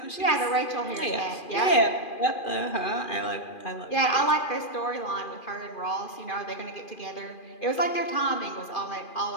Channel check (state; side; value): late; right; 2.4 ms